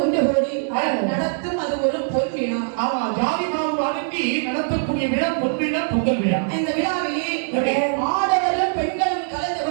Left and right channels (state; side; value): silent; left; 64 dB below the other